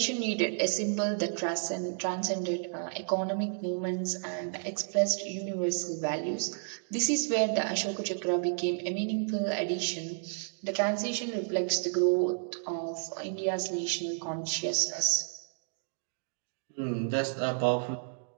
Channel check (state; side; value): silent; left; digital silence